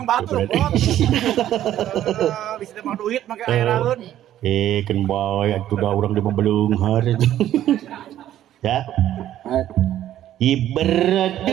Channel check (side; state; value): left; quieter; 12.2 dB